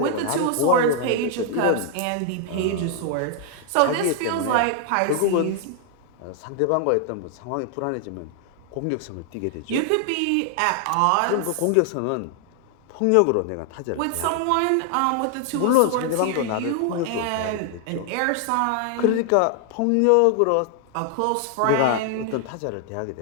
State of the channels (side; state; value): both; different; correlation 0.00